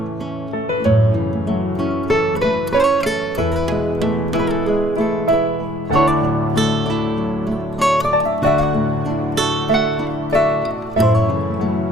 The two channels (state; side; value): normal; both; correlation 0.62